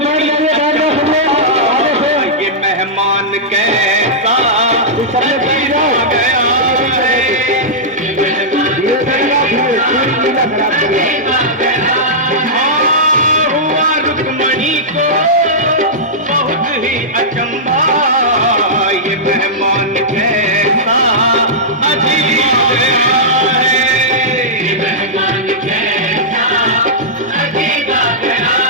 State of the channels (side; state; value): both; normal; correlation -0.13